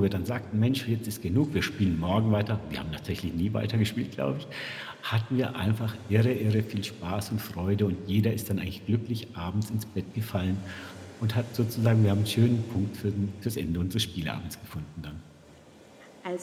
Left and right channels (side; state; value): both; identical; correlation 1.00